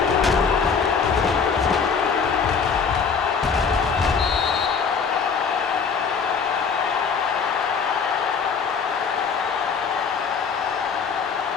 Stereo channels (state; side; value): quieter; right; 5.9 dB